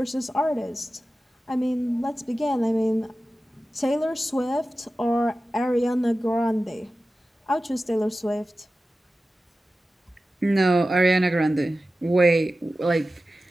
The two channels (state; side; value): normal; both; correlation 0.95